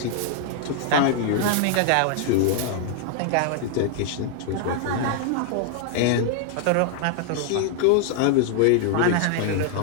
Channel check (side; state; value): both; different; correlation 0.00